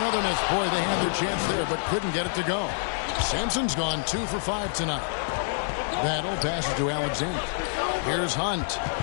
miss. Boy, they had their chance there, but couldn't get it to go. Sampson's gone 2 for 5 tonight. Battle passes to Alexander. Here's Hunt.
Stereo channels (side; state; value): right; silent; digital silence